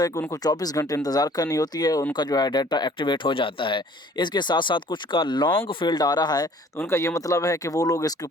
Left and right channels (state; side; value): normal; both; correlation 0.54